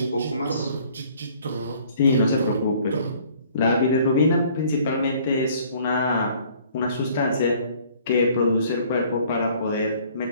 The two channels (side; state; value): both; inverted; correlation -0.57